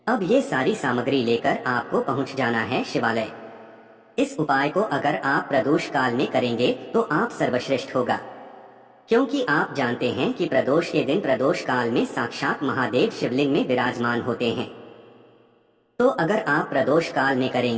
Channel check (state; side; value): identical; both; correlation 1.00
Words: अब ये सारी सामग्री लेकर आपको पहुंच जाना है शिवालय। इस उपाय को अगर आप प्रदोष काल में करेंगे तो आप सर्वश्रेष्ठ होगा, क्योंकि आप जानते हैं कि प्रदोष के दिन प्रदोष काल में साक्षात महादेव शिवलिंग में विराजमान होते हैं। तो अगर आप प्रदोष काल में